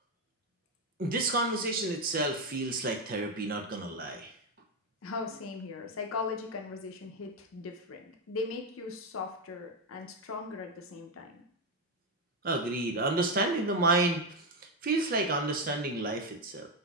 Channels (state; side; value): normal; both; correlation 0.08